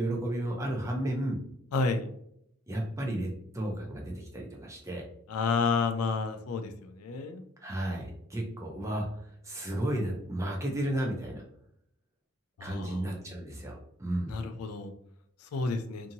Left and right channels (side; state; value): both; normal; correlation 0.65